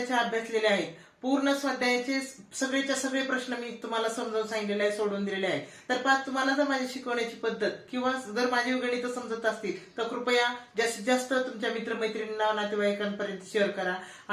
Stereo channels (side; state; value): both; identical; correlation 1.00